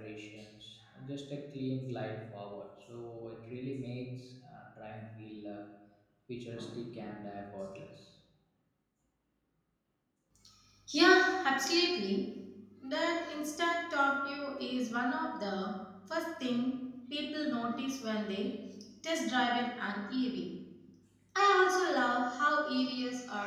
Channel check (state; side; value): identical; both; correlation 1.00